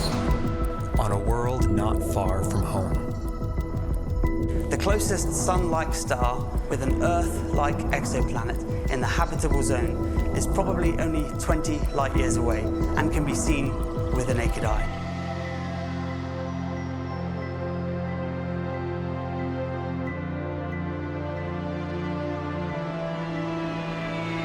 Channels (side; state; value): both; identical; correlation 1.00